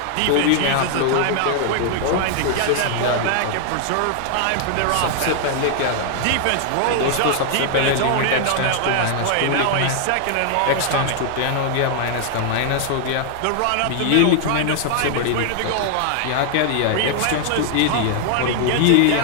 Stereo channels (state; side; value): different; both; correlation 0.00